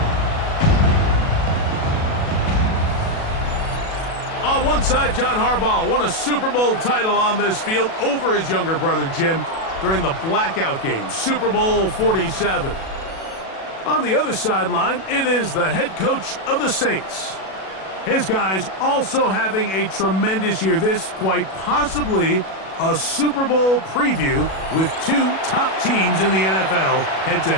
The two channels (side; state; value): right; late; 37 ms